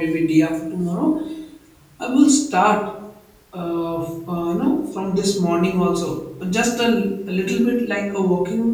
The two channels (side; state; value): both; identical; correlation 1.00